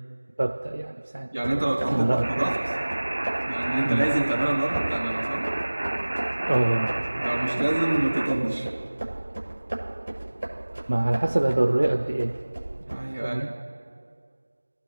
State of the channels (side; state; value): both; inverted; correlation -1.00